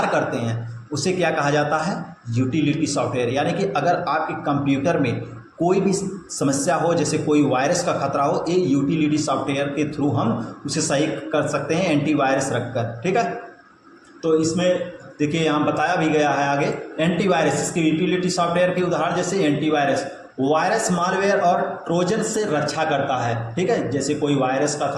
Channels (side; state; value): both; identical; correlation 1.00